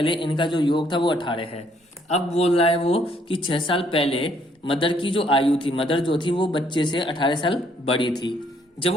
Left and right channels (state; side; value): normal; both; correlation 0.67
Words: इनका जो योग था वो 18 है। अब बोल रहा है वो कि 6 साल पहले मदर की जो आयु थी, मदर जो थी वो बच्चे से 18 साल बड़ी थी। जब